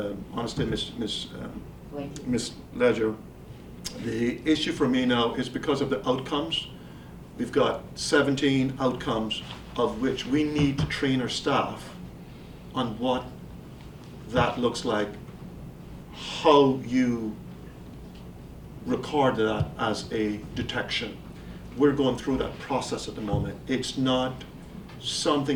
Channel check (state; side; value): identical; both; correlation 1.00